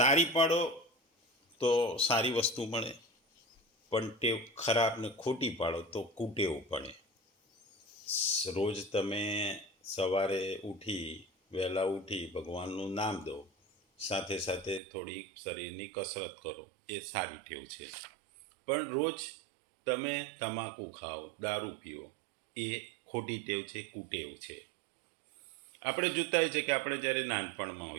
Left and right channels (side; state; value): left; drops out; at 14.8 s